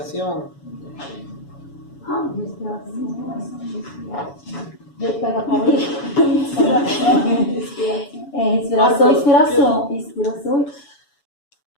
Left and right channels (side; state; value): right; late; 7.1 ms